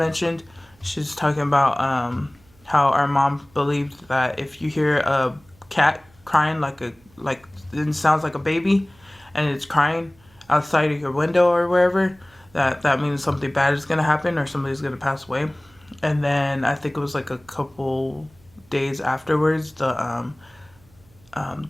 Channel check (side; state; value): right; noise; hum, 30 dB below the sound